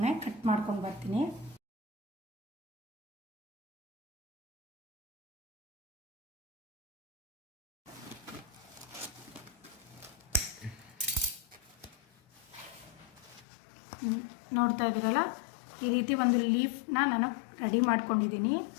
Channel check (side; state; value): right; drops out; at 13.5 s